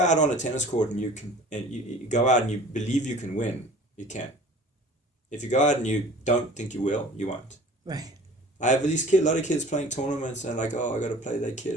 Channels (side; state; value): both; normal; correlation 0.45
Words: on a tennis court and you go out and you believe you can win, you can. If you go out and you don't think you will, you won't. Right. I have a lot of kids playing tournaments and like, oh, I got to play that